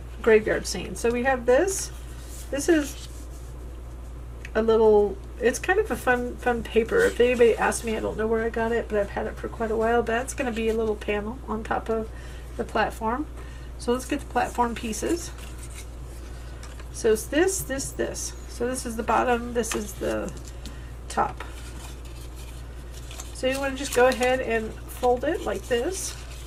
graveyard scene. So we have this. This is a little, it's kind of a fun paper. If anybody asks me, I don't know where I got it, but I've had it for quite a while. But that's going to be a little panel on top of the platform. So let's get the platform pieces. So it's this. So this is the bottom, this is the top. So you want to just go ahead and fold it like this.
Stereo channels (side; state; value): both; identical; correlation 1.00